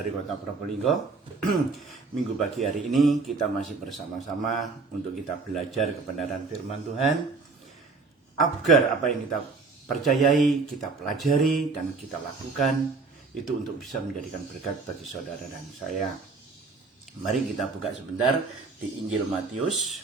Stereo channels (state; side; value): quieter; left; 4.2 dB